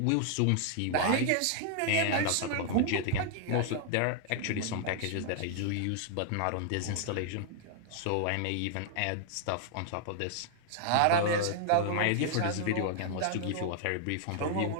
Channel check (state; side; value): different; both; correlation 0.00